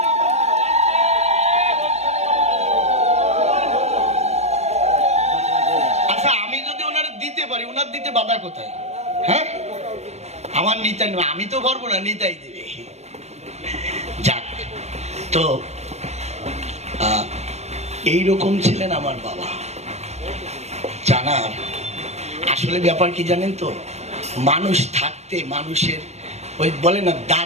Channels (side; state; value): left; late; 0.32 ms